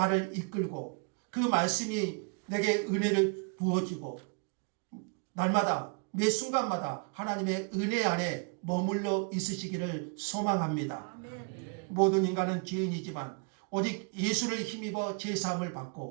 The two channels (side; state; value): left; quieter; 38.4 dB